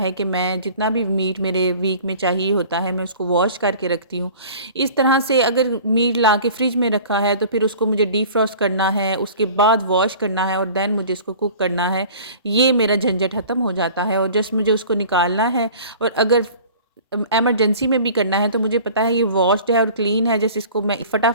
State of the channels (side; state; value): both; inverted; correlation -0.44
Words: कि मैं जितना भी मीट मेरे वीक में चाहिए होता है मैं उसको वॉश करके रखती हूँ। इस तरह से अगर मीट ला के फ्रिज में रखा है तो फिर उसको मुझे डीफ्रॉस्ट करना है, उसके बाद वॉश करना है और दैन मुझे इसको कुक करना है। ये मेरा झंझट ख़त्म हो जाता है और जस्ट मुझे उसको निकालना है। और अगर इमरजेंसी में भी करना है तो मुझे पता है ये वॉश्ड है और क्लीन है, जैसे इसको मैं